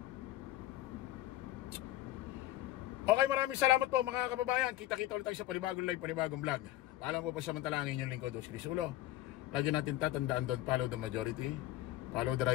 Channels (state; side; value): quieter; right; 15.0 dB